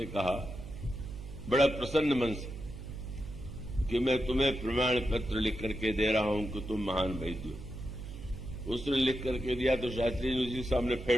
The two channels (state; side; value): noise; right; hum, 10 dB below the sound